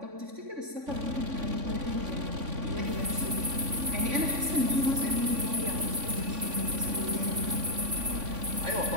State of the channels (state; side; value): late; left; 3.5 ms